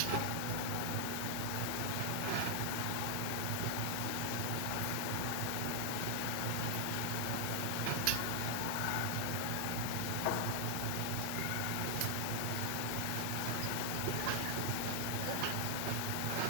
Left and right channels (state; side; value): different; both; correlation 0.00